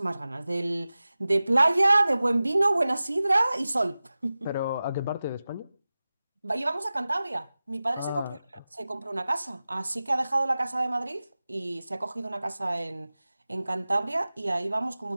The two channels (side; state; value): both; inverted; correlation -0.96